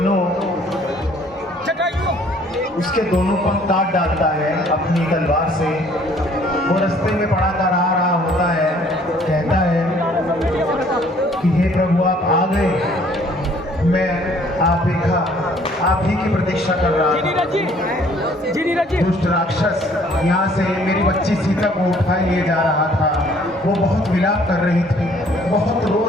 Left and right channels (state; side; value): normal; both; correlation 0.59